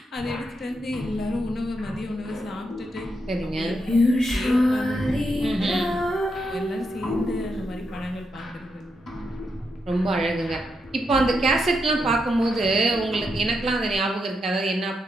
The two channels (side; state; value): both; normal; correlation 0.82